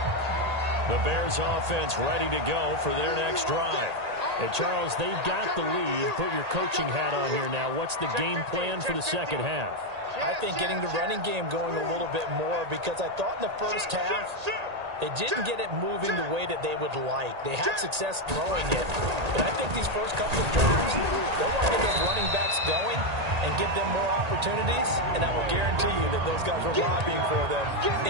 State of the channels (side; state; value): left; late; 1.8 ms